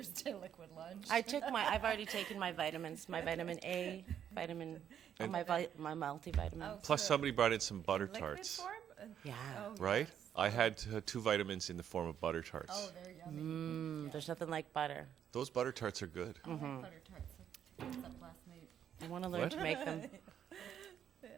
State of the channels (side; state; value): left; quieter; 9.3 dB